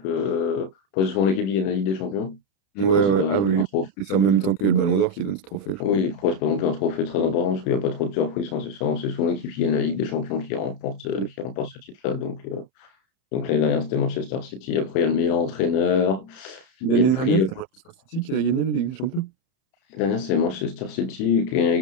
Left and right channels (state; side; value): late; right; 30 ms